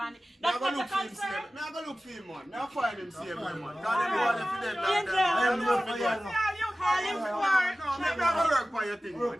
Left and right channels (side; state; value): both; normal; correlation 0.96